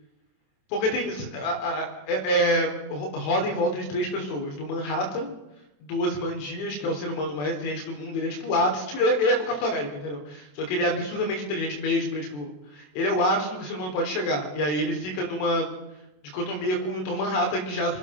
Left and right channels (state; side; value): late; right; 27 ms